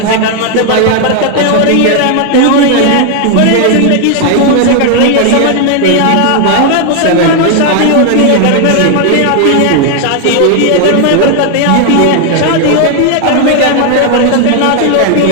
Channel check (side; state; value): both; different; correlation 0.00